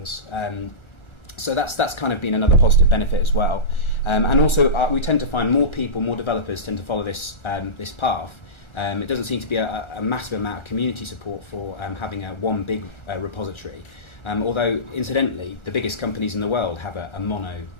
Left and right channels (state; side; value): late; right; 1.4 ms